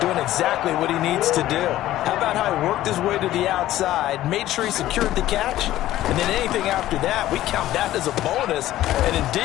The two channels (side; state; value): right; quieter; 14.3 dB